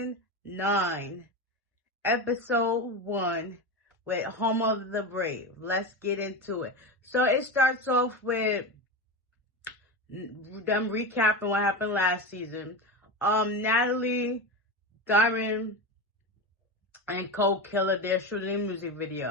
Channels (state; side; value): normal; both; correlation 0.20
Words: 9, Episode 1 with Home of the Brave. Let's get into it. So it starts off with them recapping what happened last season. Natalie, Diamond, and Cold Killer, they're shooting a music